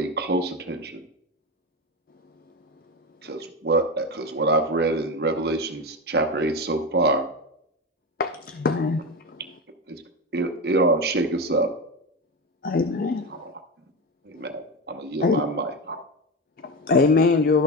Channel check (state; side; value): normal; both; correlation 0.19